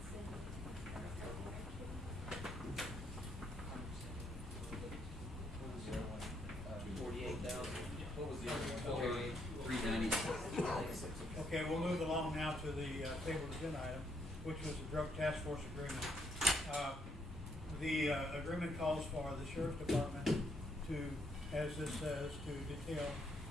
What was the other one? 396. Okay, we'll move along now to the table agenda item, which was the drug task force agreement. The agreement calls for the sheriff's department to, as this says, to detail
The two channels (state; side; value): normal; both; correlation 0.74